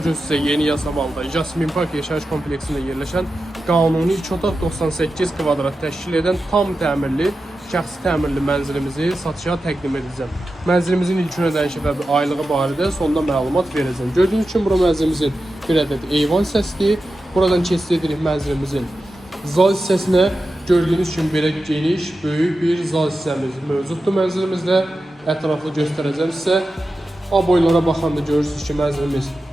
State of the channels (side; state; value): both; normal; correlation 0.91